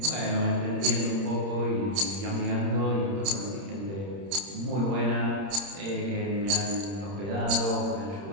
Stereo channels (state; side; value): late; left; 30 ms